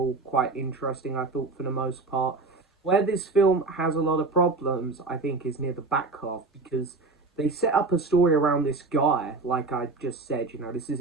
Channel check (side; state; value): left; quieter; 3.8 dB